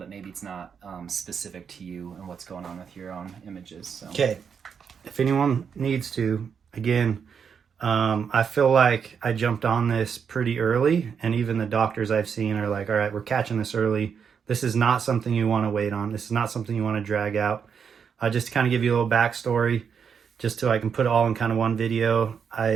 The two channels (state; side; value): quieter; left; 6.8 dB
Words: maybe it's not specific to you and what's going on with your own images. So. Okay. If anyone needs to, again, I feel like I jumped on this pretty early, and even the doctors I've seen are like, all right, we're catching this early. This is not something you want to wait on. This is not something you want to drag out. Just to kind of give you a little backstory, just so I can put it all in kind of one video,